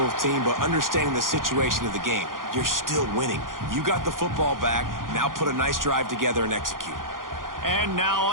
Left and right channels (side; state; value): left; late; 0.90 ms